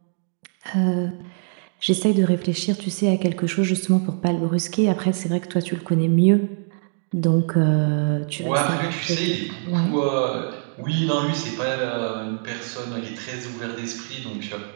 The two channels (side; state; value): left; silent; 63 dB below the other